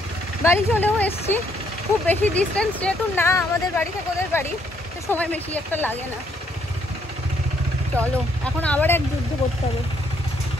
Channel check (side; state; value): both; normal; correlation 0.70